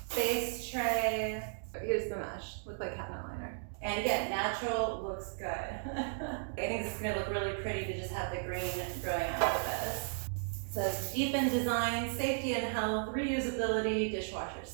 base tray. Here's the mesh, look like cabinet liner. And again, natural looks good. I think this is gonna look really pretty to just have the green growing out of this. It says deepen design, safety and health, reusability, dishwasher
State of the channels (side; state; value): left; silent; digital silence